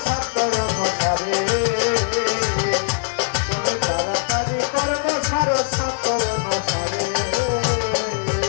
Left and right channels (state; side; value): silent; right; 65 dB below the other